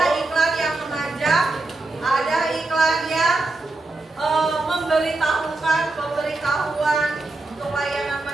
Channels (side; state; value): left; quieter; 3.1 dB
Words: iklan yang mengajak, ada iklan yang memberitahukan pemberitahuan untuk layanan